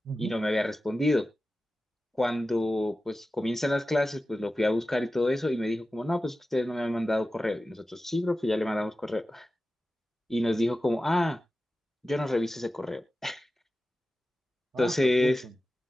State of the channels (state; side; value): normal; both; correlation 0.94